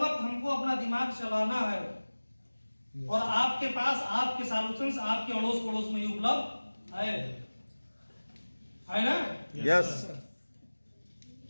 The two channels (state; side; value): inverted; both; correlation -1.00